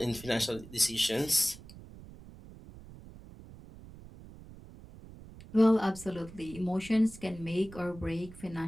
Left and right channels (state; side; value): noise; right; rumble, 18 dB below the sound